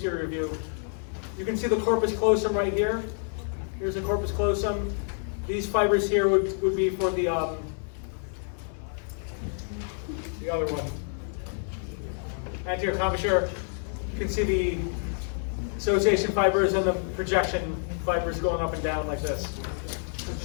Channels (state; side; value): silent; right; 59 dB below the other